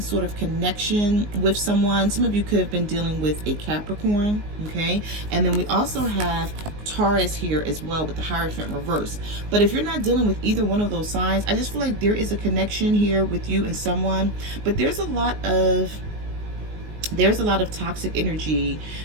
of connection with someone. Some of you could have been dealing with a Capricorn, okay? And then we also have Taurus here as well with the Hierophant reverse. But if you're not dealing with either one of those signs, I just feel like there is a connection here with you and someone, but there's a lot of toxic energy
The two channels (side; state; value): left; late; 19 ms